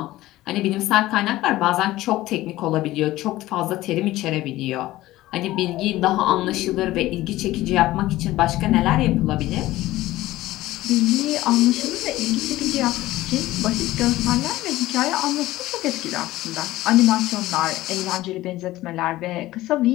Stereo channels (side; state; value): right; quieter; 16.6 dB